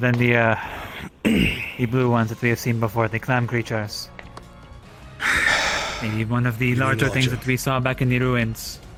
the blue ones that we have seen before, the clam creatures. Maybe one of the larger things that we saw back in the ruins.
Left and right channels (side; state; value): both; identical; correlation 1.00